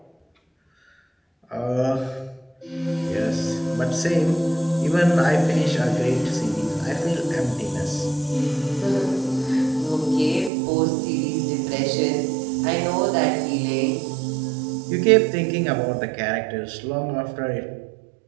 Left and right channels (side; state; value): left; drops out; at 10.5 s